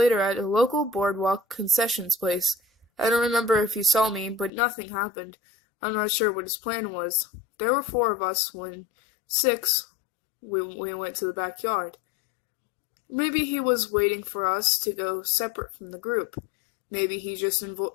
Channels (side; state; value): right; drops out; at 4.5 s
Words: at a local boardwalk concessions place. I don't remember if he saw me, but nothing happened. I'm not sure what his plan was. There were 4 of us when 6, we went to the backyard. Maybe he was waiting for us to go separate from the group. Maybe he just